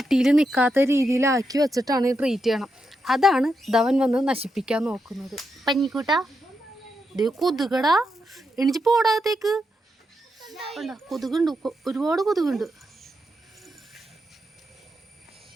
നിൽക്കാത്ത രീതിയിലാക്കി വെച്ചിട്ടാണ് ട്രീറ്റ് ചെയ്യണം. അതാണ് ധവൻ വന്ന് നശിപ്പിക്കാൻ നോക്കുന്നത്. പഞ്ഞിക്കൂട്ടാ ഇത് കൊതുകടാ, എണിച്ച് പോടാത്തേക്ക്. കൊതുകുണ്ട്, ഒരുപാട് കൊതുകുണ്ട്.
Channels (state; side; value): normal; both; correlation 0.84